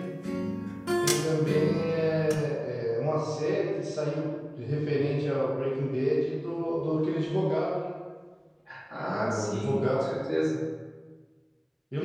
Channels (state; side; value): identical; both; correlation 1.00